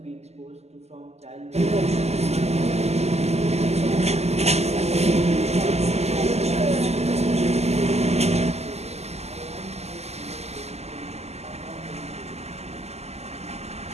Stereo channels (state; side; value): late; left; 0.31 ms